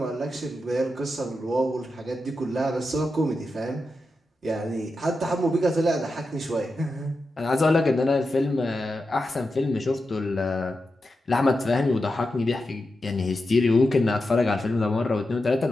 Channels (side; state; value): both; normal; correlation 0.89